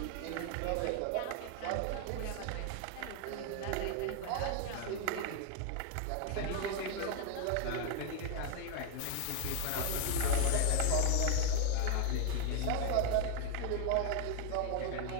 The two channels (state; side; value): different; both; correlation 0.01